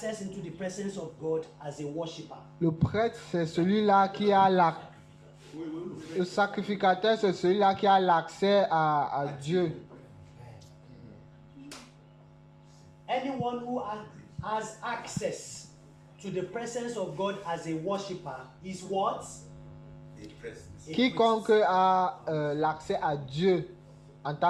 into the presence of God as a worshipper. Le prêtre, c'est celui-là qui a le sacrificateur, c'est celui-là qui a l'accès à Dieu. Anyone who has access to the presence of God as a worshipper is what? A Quiconque priest. a l'accès à Dieu en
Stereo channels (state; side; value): identical; both; correlation 1.00